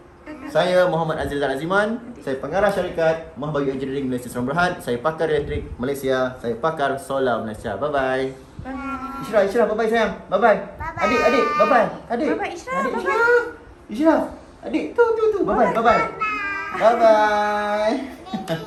Saya Muhammad Azil Zan Aziman. Saya pengarah syarikat Mahbagi Engineering Malaysia Serang Berhad. Saya pakar elektrik Malaysia. Saya pakar solar Malaysia. Bye-bye. Bye. Ishraf, bye-bye sayang. Bye-bye. Adik, bye-bye. Adik. Bye-bye, Ishraf. Ishraf. Adik, tu. Bye-bye. Bye-bye.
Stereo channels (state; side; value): identical; both; correlation 1.00